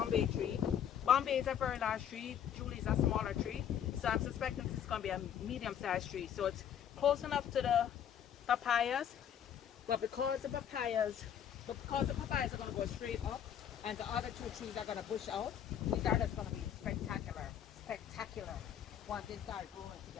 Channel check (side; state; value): right; quieter; 9.3 dB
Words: tree. Bombay is a very large tree, Julie is a smaller tree. So I'm suspecting this is gonna be a medium-sized tree. So it's close enough to the papayas, but because the papayas are gonna go straight up and the other two trees are gonna bush out, these are just gonna be spectacular once they start growing